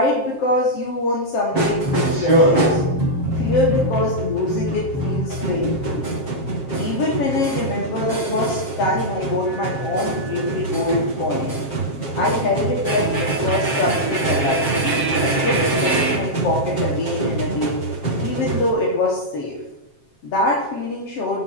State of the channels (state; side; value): late; right; 7.5 ms